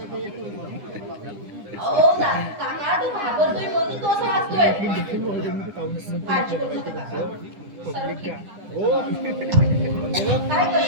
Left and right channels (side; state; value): left; late; 9.9 ms